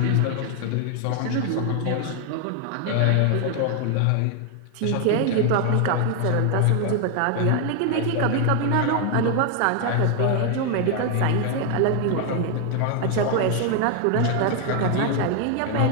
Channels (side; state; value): both; different; correlation 0.00